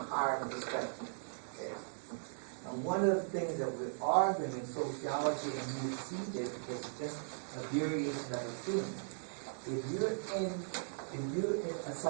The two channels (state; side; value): silent; left; digital silence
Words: higher perspective. Okay? And one of the things that we're arguing in sociology, and you see this because it's just a variation of a theme. If you're a